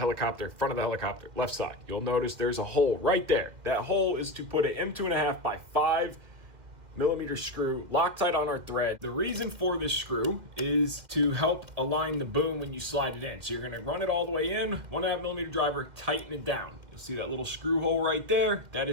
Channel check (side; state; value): left; late; 2.1 ms